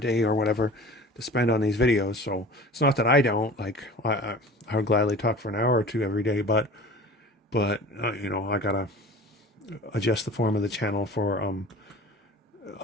or whatever to spend on these videos. So it's not that I don't. Like, I would gladly talk for an hour or 2 every day, but I gotta adjust the form of the channel for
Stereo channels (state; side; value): normal; both; correlation 0.41